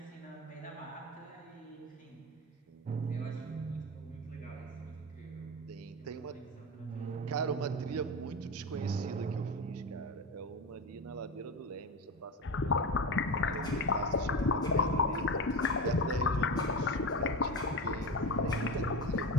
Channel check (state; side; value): normal; both; correlation 0.22